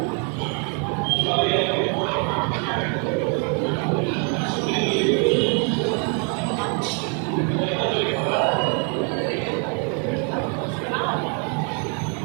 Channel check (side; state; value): left; quieter; 38.4 dB